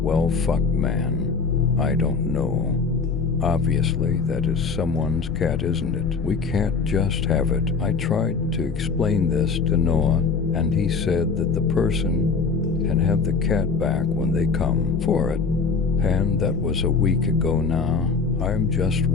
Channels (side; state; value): right; quieter; 4.9 dB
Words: Well, fuck, man. I don't know. Obviously, that is someone's cat, isn't it? We can't just have it. I tried to explain this to Noah, and he said that the person can have the cat back when they come for it. And that was a week ago now. I'm just